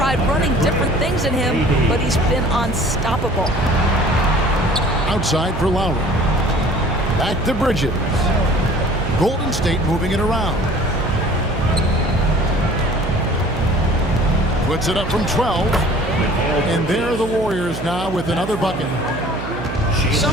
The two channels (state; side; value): noise; right; hum, 8 dB below the sound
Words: running different things in him, but he's been unstoppable. Outside for Lowry. Back to Bridges. Golden State moving it around. Puts it up from 12. And there are the Warriors now with another bucket.